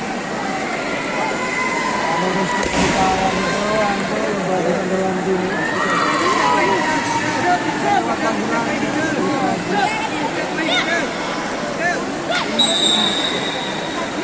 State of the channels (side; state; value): both; identical; correlation 1.00